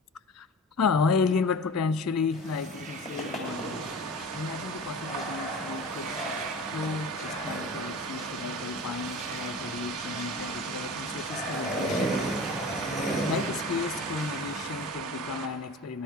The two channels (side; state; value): both; normal; correlation 0.36